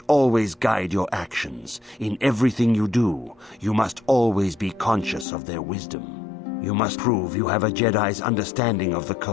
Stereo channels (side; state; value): right; drops out; at 5.2 s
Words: always guide your actions. In everything you do, you must always be conscious of their wisdom. You must prove you have a Jedi's understanding of the